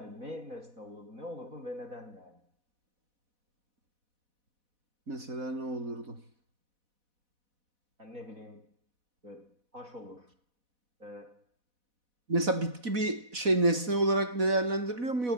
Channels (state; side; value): late; left; 4.1 ms